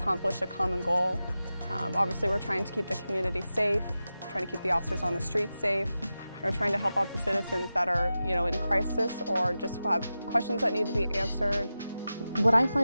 a common goal. Obviously, we're trying to keep the community safe, trying to keep the officers on the streets safe. We're trying to help out the citizens that are, in crisis or just have questions that need to be answered. What I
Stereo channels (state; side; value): inverted; both; correlation -0.93